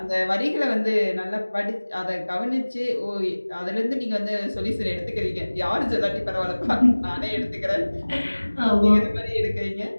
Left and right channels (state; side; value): inverted; both; correlation -1.00